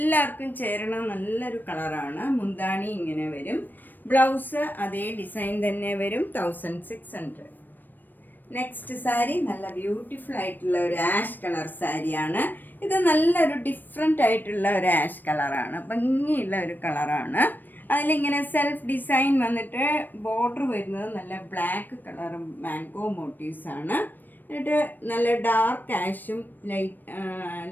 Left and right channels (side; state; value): right; late; 0.091 ms